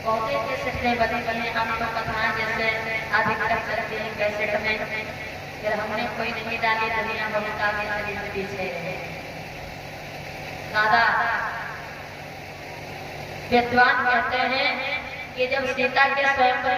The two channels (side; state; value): both; identical; correlation 1.00